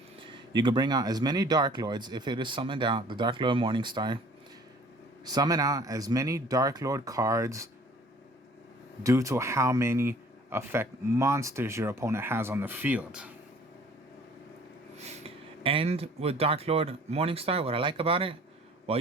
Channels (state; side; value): normal; both; correlation 0.52